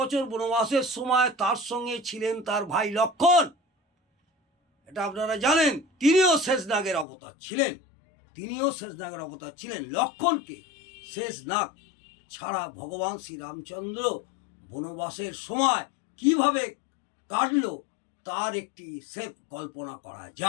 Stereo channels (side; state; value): right; drops out; at 7.1 s